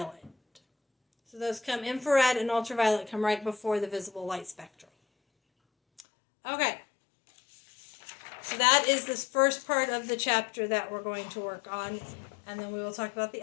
So those come, infrared and ultraviolet come right before the visible light spectrum. Okay. So that is this first part of the chapter that we're going to work on, and then we will talk about the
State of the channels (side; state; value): right; drops out; at 6.1 s